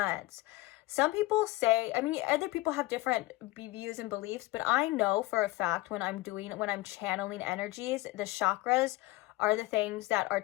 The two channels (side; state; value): right; quieter; 19.7 dB